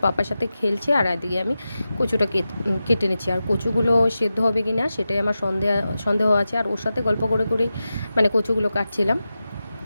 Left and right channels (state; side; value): inverted; both; correlation -0.92